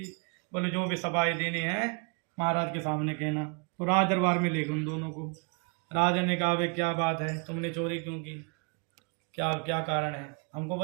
बोले जो भी सफाई देनी है महाराज के सामने कहना। तो राज दरबार में ले गए उन दोनों को। राजा ने कहा भाई क्या बात है, तुमने चोरी क्यों की, क्या क्या कारण है, हमको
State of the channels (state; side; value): quieter; left; 36.7 dB